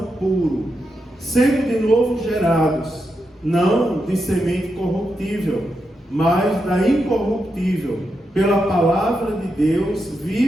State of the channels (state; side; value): normal; both; correlation 0.85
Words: puro, sendo de novo gerados, não de semente corruptível, mas da incorruptível, pela palavra de Deus